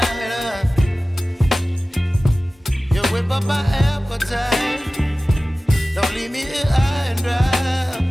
You whip up my appetite. Don't leave me here high and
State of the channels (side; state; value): both; normal; correlation 0.97